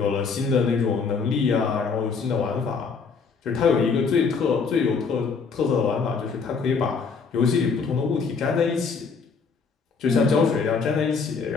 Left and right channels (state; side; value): quieter; right; 5.2 dB